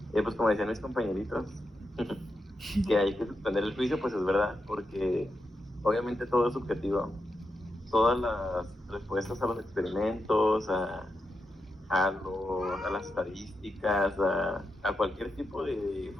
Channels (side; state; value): both; normal; correlation 0.86